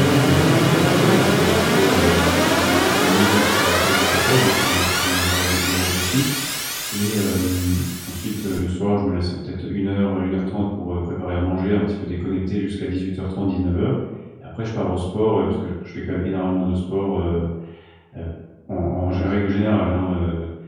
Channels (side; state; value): both; identical; correlation 1.00